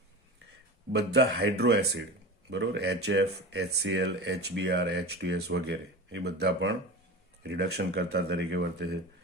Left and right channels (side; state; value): both; normal; correlation 0.29